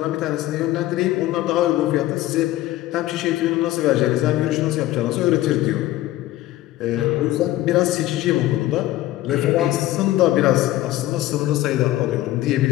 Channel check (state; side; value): quieter; right; 15.6 dB